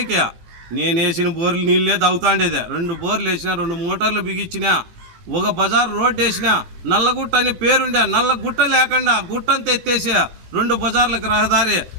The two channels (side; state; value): left; late; 17 ms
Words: నేను వేసిన బోర్లు నీళ్ళే తాగుతాండేదే. 2 బోర్లు వేసిన, 2 మోటార్లు బిగించిన, ఒక బజార్ రోడ్డు వేసిన, నల్లగుట్ట అని పేరుండే, నల్ల గుట్ట లేకుండా గుట్టంతా ఎత్తేసి 2 బజార్లకు రహదారి